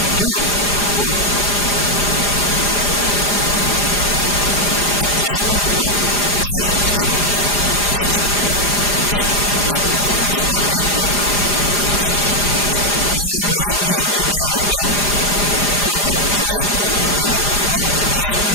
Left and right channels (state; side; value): late; right; 4.9 ms